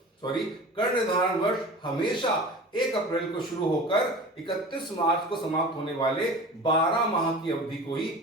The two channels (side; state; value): both; normal; correlation 0.37